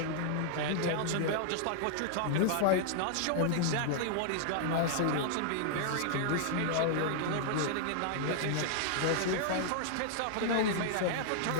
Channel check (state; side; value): different; both; correlation -0.01